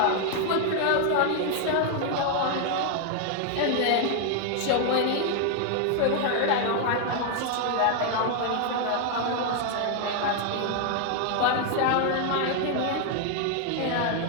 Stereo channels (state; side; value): different; both; correlation 0.00